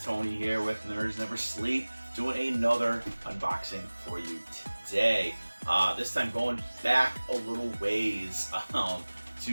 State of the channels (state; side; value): inverted; both; correlation -1.00